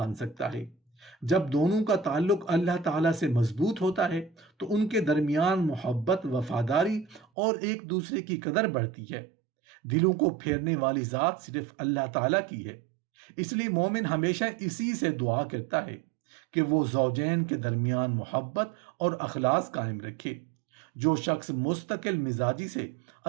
سکتا ہے۔ جب دونوں کا تعلق اللہ تعالیٰ سے مضبوط ہوتا ہے تو ان کے درمیان محبت، وفاداری اور ایک دوسرے کی قدر بڑھتی ہے۔ دلوں کو پھیرنے والی ذات صرف اللہ تعالیٰ کی ہے، اس لیے مومن ہمیشہ اسی سے دعا کرتا ہے کہ وہ زوجین کے درمیان محبت اور اخلاص قائم رکھے۔ جو شخص مستقل مزاجی سے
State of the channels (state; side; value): drops out; left; at 7.2 s